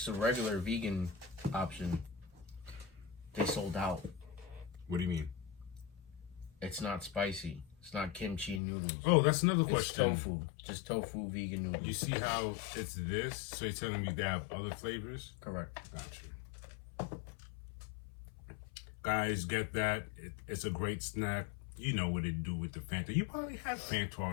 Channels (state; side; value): drops out; right; at 8.6 s